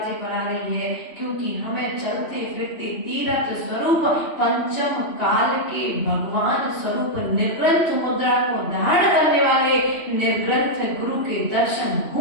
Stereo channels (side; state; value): right; late; 3.0 ms